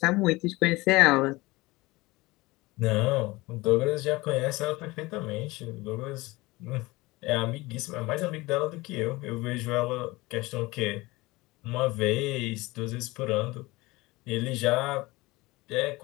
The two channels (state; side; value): quieter; right; 21.5 dB